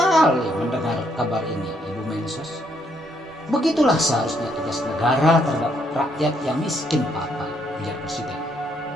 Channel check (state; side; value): normal; both; correlation 0.72